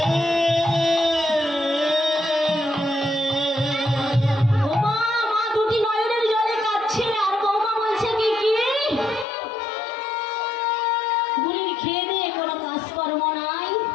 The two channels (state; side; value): drops out; right; at 9.2 s